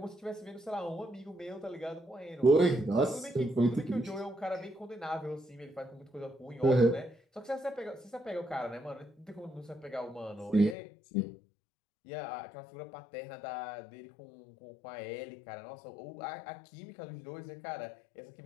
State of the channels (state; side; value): drops out; right; at 10.8 s